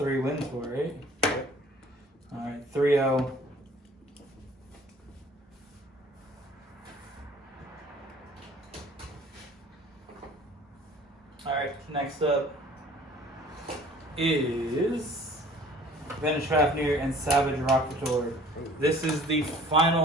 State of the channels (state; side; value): normal; both; correlation 0.51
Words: wins for it, right? Alright, 3-0. Alright, next up is Vanish Fafnir and Savage Rocketeur. This is the